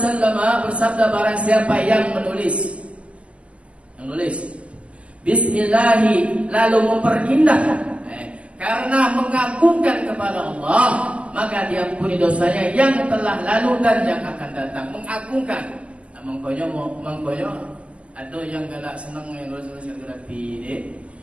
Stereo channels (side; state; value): left; late; 0.059 ms